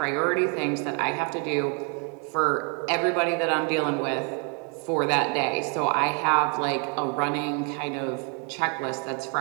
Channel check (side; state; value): left; quieter; 37.5 dB